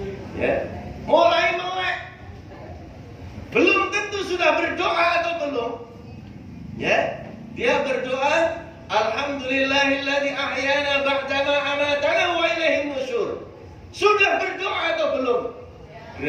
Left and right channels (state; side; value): identical; both; correlation 1.00